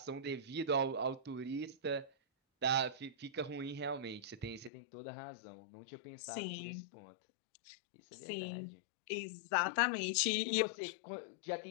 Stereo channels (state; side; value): drops out; right; at 4.7 s